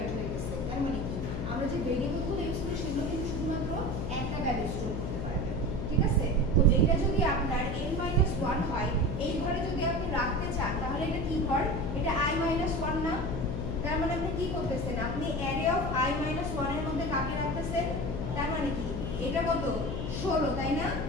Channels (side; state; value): left; noise; hum, 3 dB below the sound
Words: হয়ে গেছে। তার মানে কি, আমরা যে ভেরিয়েবলগুলো ইউজ করি সেগুলো কিন্তু শুধুমাত্র একটা ভ্যালু স্টোর করতে পারবে, ঠিক আছে? তো এটা যদি আপনার n-1 হয়, এই ঘরে যদি আপনি রাখতে চান তাহলে এটা কি ঘর? এটা i-1 না? তার মানে আপনি কি করতেছেন? আপনি অ্যারে অফ i-1 এর মধ্যে কাকে রাখতেছেন? তার মানে কি, এটা কত? 16, তাই না?